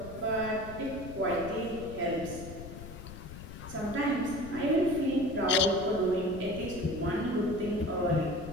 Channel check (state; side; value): noise; left; rumble, 12 dB below the sound